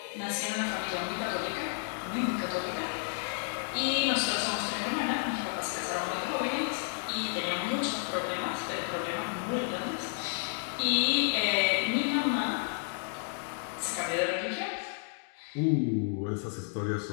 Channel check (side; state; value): right; silent; 57 dB below the other